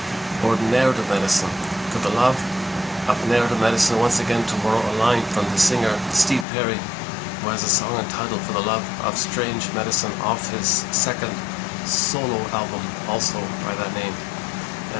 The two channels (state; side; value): drops out; right; at 6.5 s